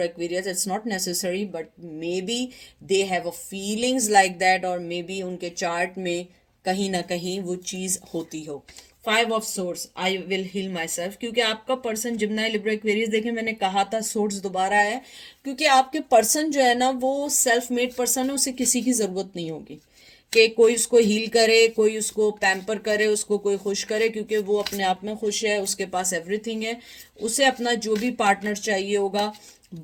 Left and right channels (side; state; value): both; identical; correlation 1.00